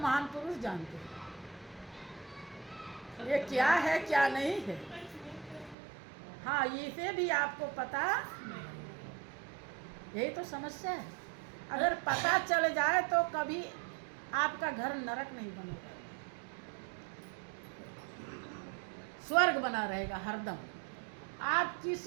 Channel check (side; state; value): left; drops out; at 5.8 s